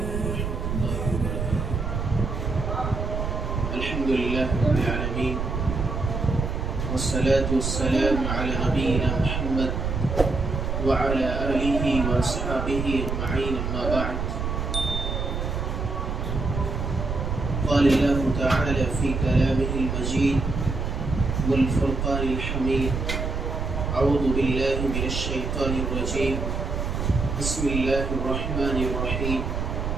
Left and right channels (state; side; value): noise; right; rumble, 2 dB below the sound